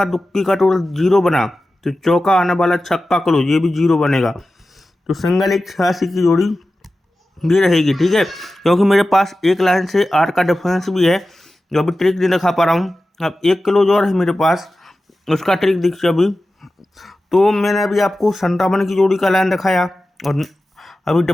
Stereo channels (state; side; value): normal; both; correlation 0.94